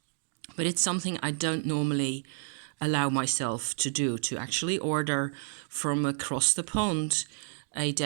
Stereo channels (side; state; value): left; silent; digital silence